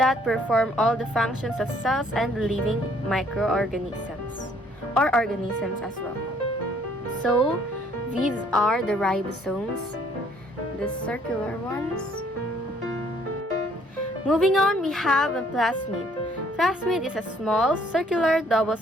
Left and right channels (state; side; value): normal; both; correlation 0.63